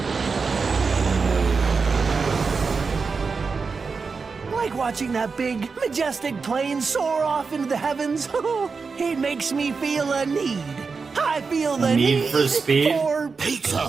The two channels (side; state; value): left; quieter; 4.8 dB